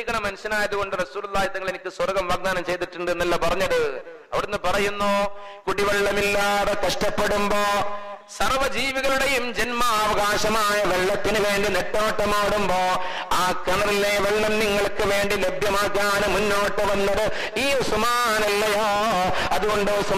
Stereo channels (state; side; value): identical; both; correlation 1.00